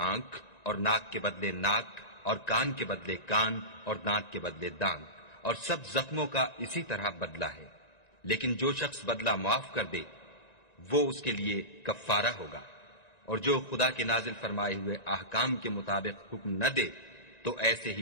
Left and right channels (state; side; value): late; right; 1.9 ms